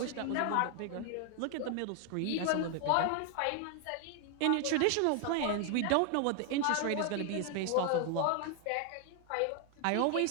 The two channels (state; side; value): different; both; correlation 0.00